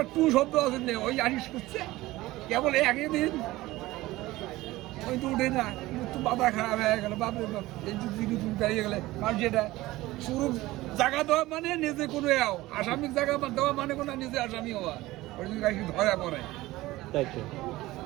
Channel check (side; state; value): left; quieter; 18.1 dB